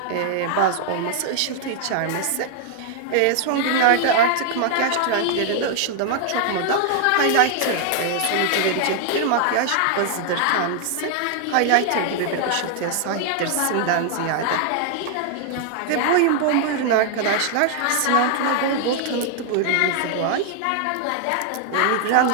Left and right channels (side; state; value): both; different; correlation 0.00